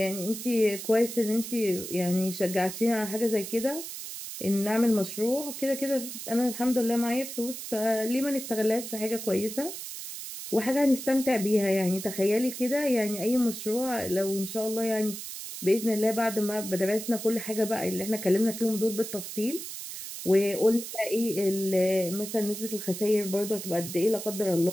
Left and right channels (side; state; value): right; noise; hiss, 9 dB below the sound